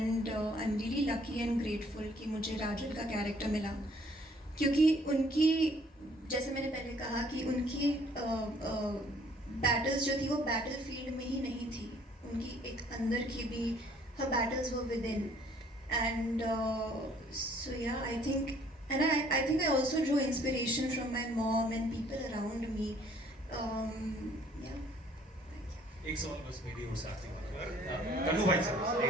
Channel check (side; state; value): both; normal; correlation 0.60